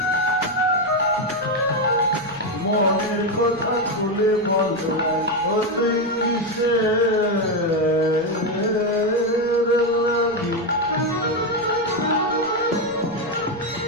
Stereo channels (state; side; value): noise; right; rumble, 23 dB below the sound